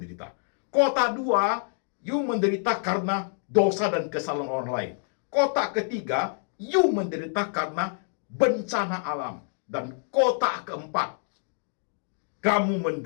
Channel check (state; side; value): silent; right; 60 dB below the other